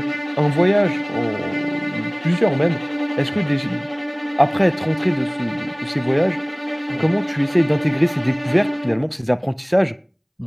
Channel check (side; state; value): both; identical; correlation 1.00